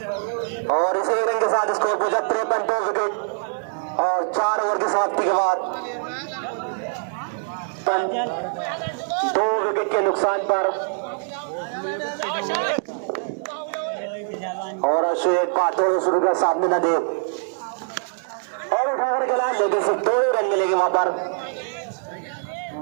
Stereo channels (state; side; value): silent; left; digital silence